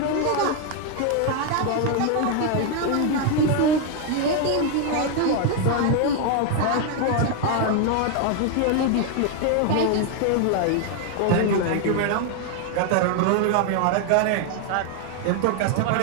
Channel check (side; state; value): both; different; correlation 0.01